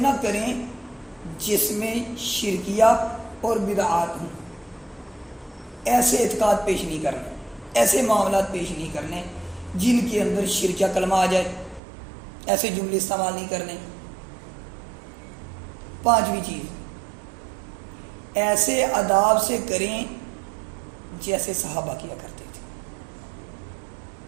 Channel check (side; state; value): left; drops out; at 11.8 s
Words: کریں جس میں شرکیہ اور بدعات ہوں، ایسے اعتقاد پیش نہیں کرنے، ایسے معاملات پیش نہیں کرنے جن کے اندر شرکیہ کلمہ آ جائے، ایسے جملے استعمال نہیں کرنے۔ پانچویں چیز ایسے آداب سے کریں جیسے صحابہ کیا کرتے تھے،